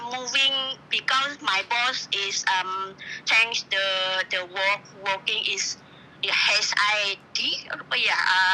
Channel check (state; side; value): identical; both; correlation 1.00